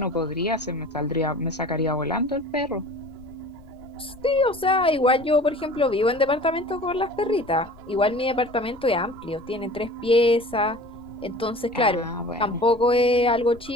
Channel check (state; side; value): noise; left; rumble, 22 dB below the sound